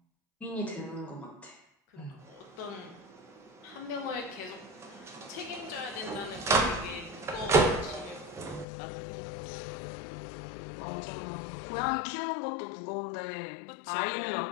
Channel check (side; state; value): right; drops out; at 8.7 s